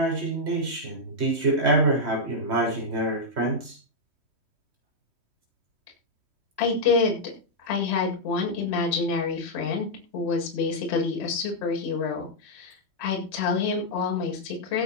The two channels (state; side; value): late; left; 3.1 ms